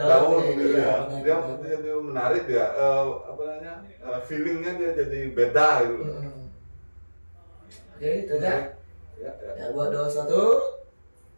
Dia jadi menarik dia. Feelingnya dia jadi beda gitu. Oke, itu aja. Ya, buat 21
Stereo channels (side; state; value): both; inverted; correlation -1.00